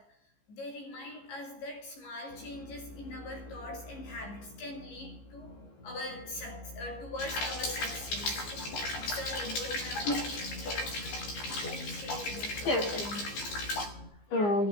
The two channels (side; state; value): right; late; 15 ms